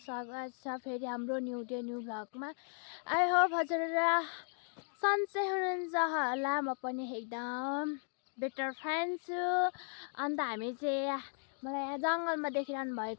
स्वागत छ फेरि हाम्रो न्यू डे न्यू भ्लगमा। आई होप हजुरहरू सन्चै हुनुहुन्छ होला। म पनि एकदम बेटर फ्यान छु। अन्त हामी चाहिँ मलाई यहाँ जङ्गलमा देखिरहनु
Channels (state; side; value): silent; right; 54 dB below the other